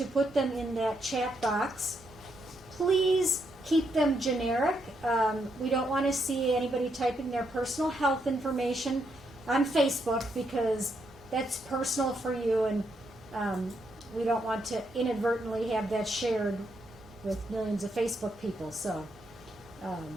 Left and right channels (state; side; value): normal; both; correlation 0.78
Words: put them in that chat box. Please keep them generic. We don't want to see anybody typing their personal health information on Facebook, because that's personal for you, and we don't want to inadvertently have that shared with millions of Facebook people. So